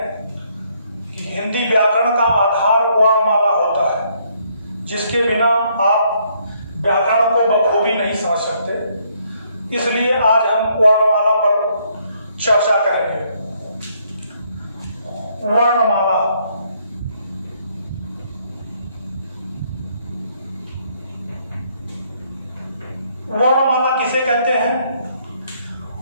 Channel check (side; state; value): both; inverted; correlation -0.69